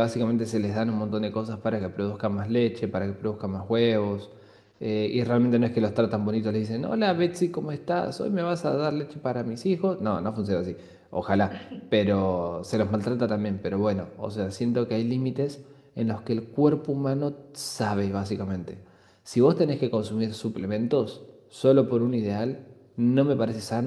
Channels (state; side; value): identical; both; correlation 1.00